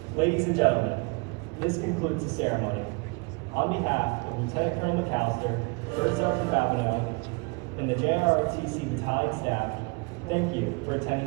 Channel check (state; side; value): quieter; left; 30.7 dB